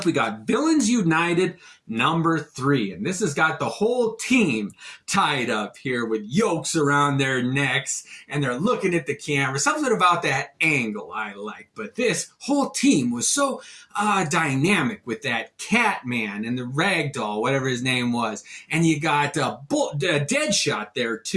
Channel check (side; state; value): both; identical; correlation 1.00